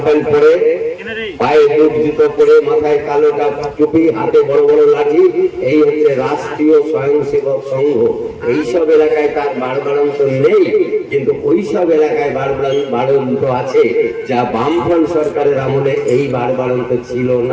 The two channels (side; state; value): both; identical; correlation 1.00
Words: প্যান্ট পরে, পায়ে বুট জুতো পরে, মাথায় কালো টুপি, হাতে বড় বড় লাঠি, এই হচ্ছে রাষ্ট্রীয় স্বয়ংসেবক সংঘ। এইসব এলাকায় তার বাড়বাড়ন্ত নেই, কিন্তু ওইসব এলাকায় বাড়বাড়ন্ত আছে যা বামফ্রন্ট সরকারের আমলে এই বাড়বাড়ন্ত ছিল